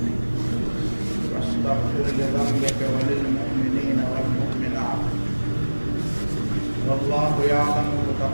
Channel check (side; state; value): both; inverted; correlation -1.00